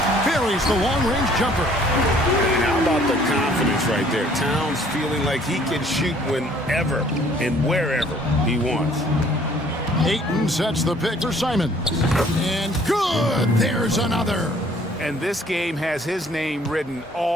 Buries the long-range jumper. And how about the confidence right there? Towns feeling like he can shoot whenever and wherever he wants. Ayton sets the pick for Simons. And good! There's another. And this game has his name written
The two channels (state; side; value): normal; both; correlation 0.58